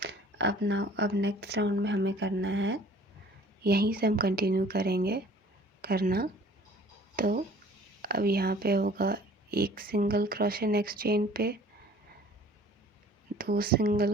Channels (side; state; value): both; normal; correlation 0.51